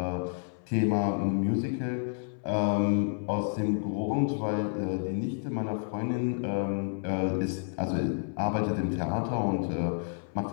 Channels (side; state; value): right; silent; 58 dB below the other